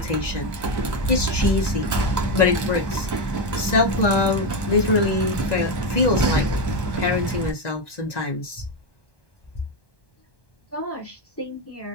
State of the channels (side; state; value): right; late; 1.1 ms